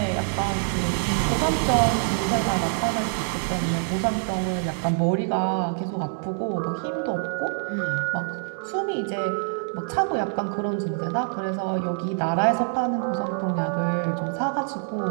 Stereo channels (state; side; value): silent; left; 61 dB below the other